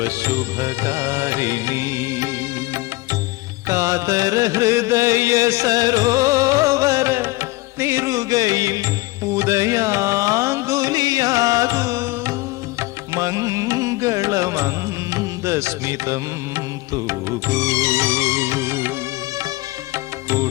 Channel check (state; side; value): quieter; right; 21.2 dB